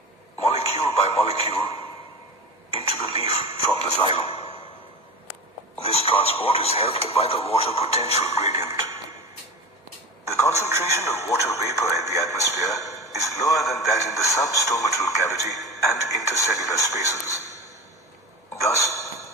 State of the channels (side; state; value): both; normal; correlation 0.29